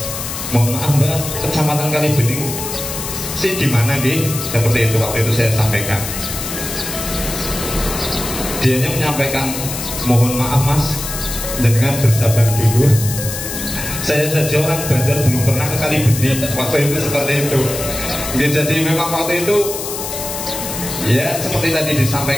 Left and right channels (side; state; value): left; noise; hiss, 6 dB below the sound